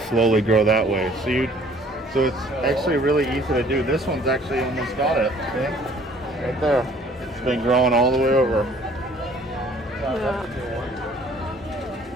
slowly grow that way. So it's actually really easy to do. This one's actually almost got it. See? Right there. It's been growing all the way over. Yeah.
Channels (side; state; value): both; normal; correlation 0.56